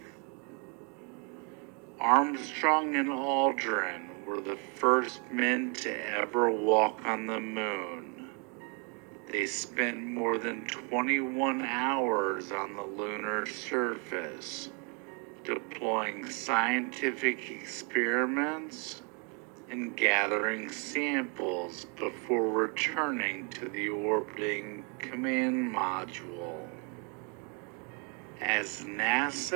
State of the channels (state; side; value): quieter; left; 36.1 dB